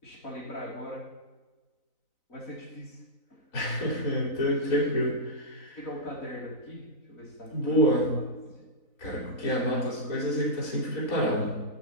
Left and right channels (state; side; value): late; right; 3.9 ms